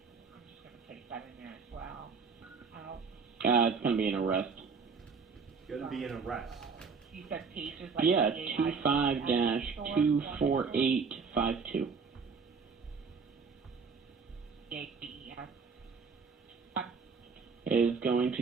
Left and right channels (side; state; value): left; quieter; 5.3 dB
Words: I'm just going to place that in there as well. It's going to be an arrest. It's gonna be an arrest. You said pages like Yeah, 25-24852. Is going